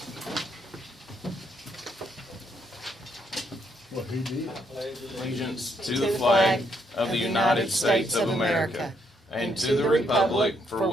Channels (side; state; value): both; normal; correlation 0.74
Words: What he did. Allegiance to the flag of the United States of America and to the republic for